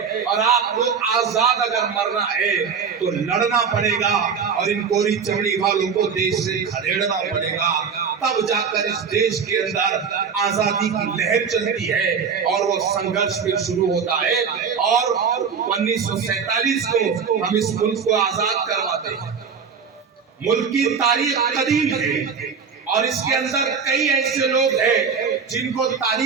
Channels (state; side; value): quieter; left; 6.2 dB